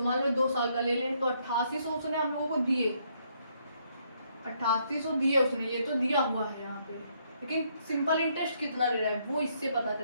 मान लो 2 साल का ले लें तो 8800 उसने हम लोगों को दिए, 8800 दिए उसने, ये तो दिया हुआ है यहाँ पे, लेकिन सिंपल इंटरेस्ट कितना ले रहा है वो इससे पता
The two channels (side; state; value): both; inverted; correlation -0.71